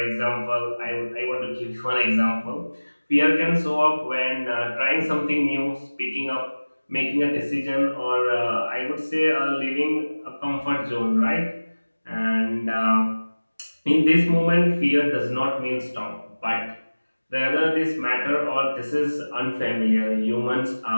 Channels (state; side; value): inverted; both; correlation -1.00